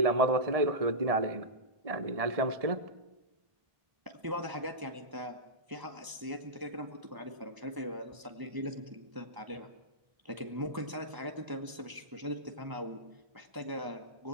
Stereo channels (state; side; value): late; left; 1.0 ms